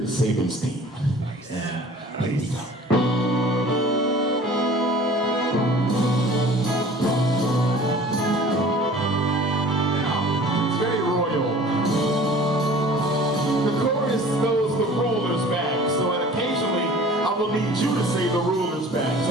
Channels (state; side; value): normal; both; correlation 0.46